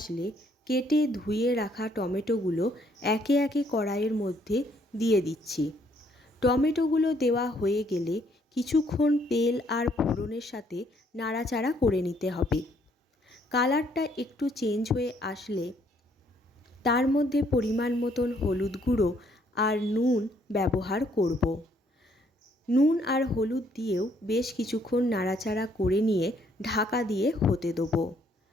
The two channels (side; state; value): both; normal; correlation 0.67